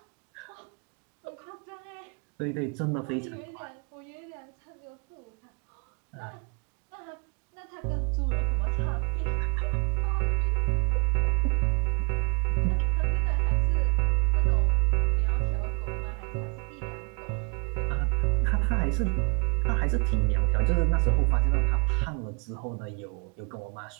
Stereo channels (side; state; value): left; quieter; 35.8 dB